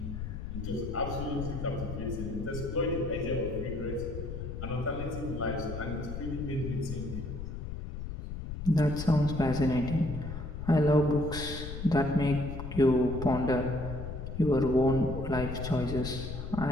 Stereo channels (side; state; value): left; noise; rumble, 7 dB below the sound